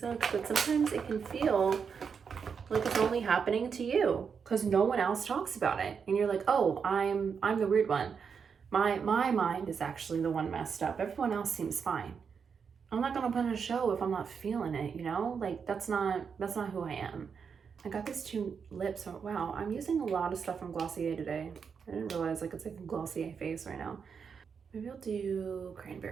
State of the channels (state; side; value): quieter; left; 6.3 dB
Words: But sometimes it can feel like it's only happening to you because no one else talks about it. And you're like, oh, I'm the weird one. My mind is actually the one messed up. Everyone else seems fine. I'm not gonna put on a show if I'm not feeling it, you know? Like, that's not who I am. I got these two lips. Oh, wow, I'm using a lot of stuff from Glossier today. I didn't realize like it's like a Glossier face right now. Maybe I'll do